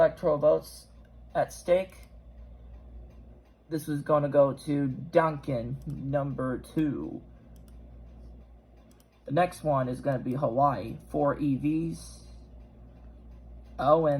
votes at stake, this is going to go to Duncan, number 2. The next one is going to be Hawaii, 4 EVs.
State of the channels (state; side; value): identical; both; correlation 1.00